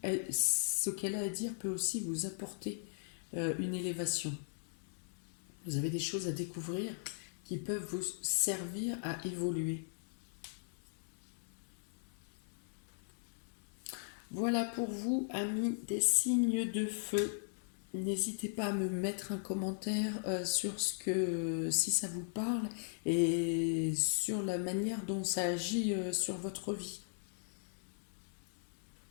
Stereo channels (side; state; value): right; silent; 52 dB below the other